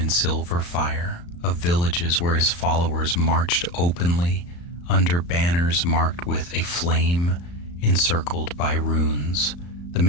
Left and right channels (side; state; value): right; late; 35 ms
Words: silver fire, of villages where his followers marched openly under banners marked with a flame encircled by runes. The